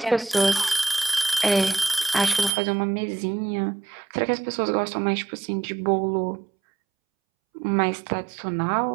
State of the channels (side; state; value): left; drops out; at 2.6 s